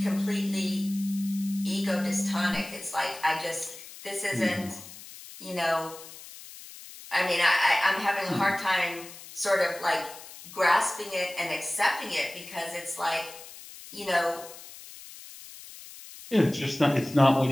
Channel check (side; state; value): left; noise; hiss, 16 dB below the sound